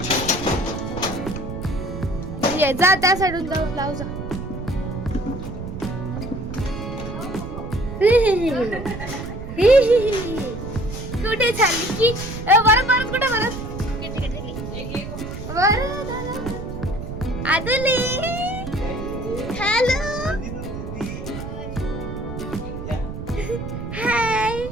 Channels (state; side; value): noise; right; rumble, 8 dB below the sound